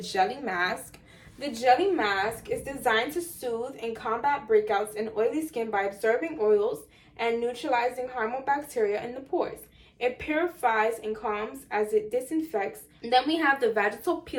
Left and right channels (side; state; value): both; identical; correlation 1.00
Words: Mask. The Jelly Mask is designed to soothe and combat breakouts in oily skin by absorbing oils and neutralizing harmful bacteria in the pores. It purifies and calms as it disinfects. And then we have the Vaginal